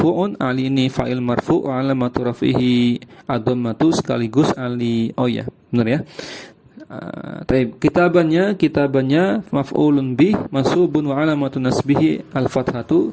Ali ini fa'il marfu' wa 'alamatu raf'ihi ad-dhammatu, sekaligus Ali. Oh ya, benar ya. Kitabannya maf'ulun bih mansubun wa alamatun nasbihi al-fathatu,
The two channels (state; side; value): identical; both; correlation 1.00